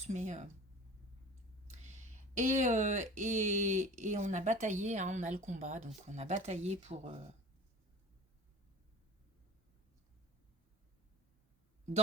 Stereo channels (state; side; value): normal; both; correlation 0.39